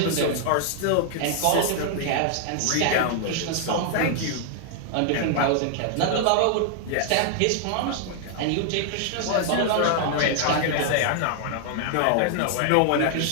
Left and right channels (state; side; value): different; both; correlation 0.00